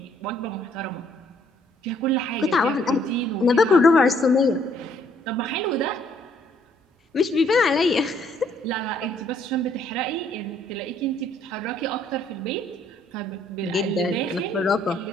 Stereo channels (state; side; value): normal; both; correlation 0.66